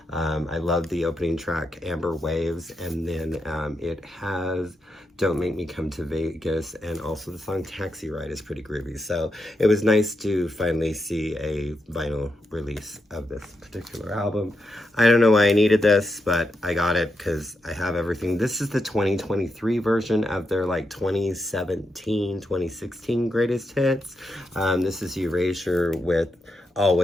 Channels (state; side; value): normal; both; correlation 0.84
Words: I love the opening track, Amber Waves, and then it has Don't Make Me Come to Vegas, and also the song Taxi Ride is pretty groovy. So it was nice to finally see a vinyl release of this particular album. I don't know why I needed this, but I got it because I have everything. This is the 2023 version of their like 2017, 2016 greatest hits. This is Erasure with